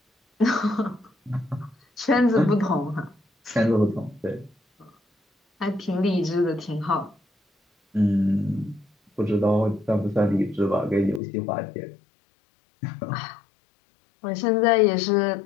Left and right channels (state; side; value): drops out; right; at 11.2 s